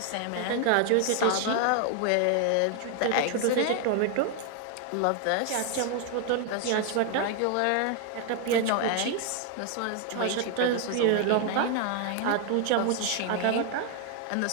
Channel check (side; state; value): both; different; correlation 0.00